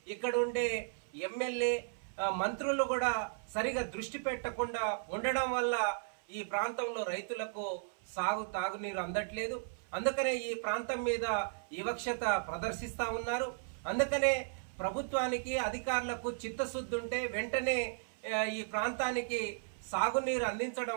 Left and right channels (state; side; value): silent; left; 54 dB below the other